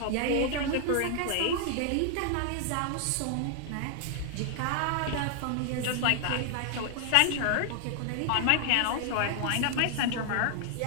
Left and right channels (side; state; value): both; different; correlation 0.00